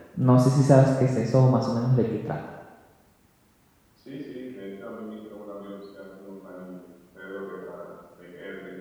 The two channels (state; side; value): identical; both; correlation 1.00